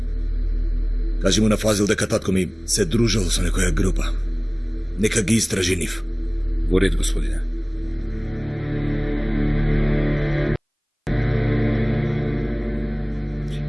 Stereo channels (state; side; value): identical; both; correlation 1.00